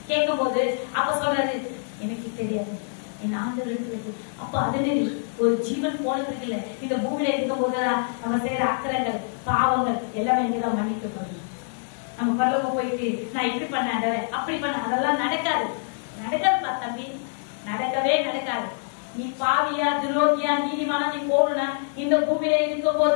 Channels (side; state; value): right; silent; 61 dB below the other